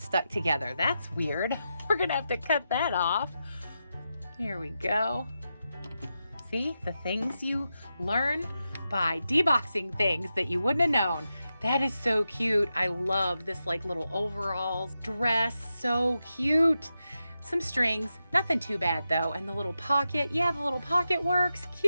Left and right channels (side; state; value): both; inverted; correlation -0.89